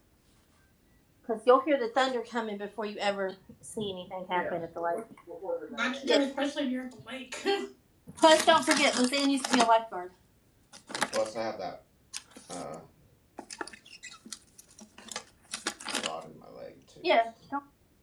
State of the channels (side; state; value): both; identical; correlation 1.00